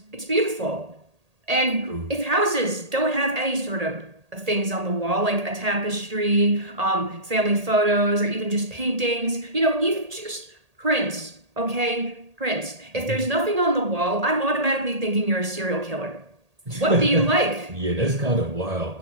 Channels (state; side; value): late; left; 1.8 ms